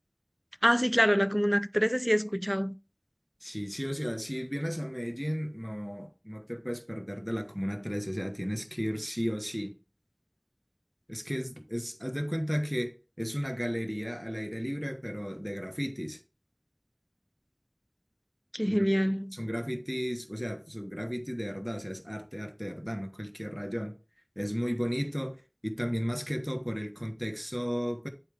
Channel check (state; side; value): identical; both; correlation 1.00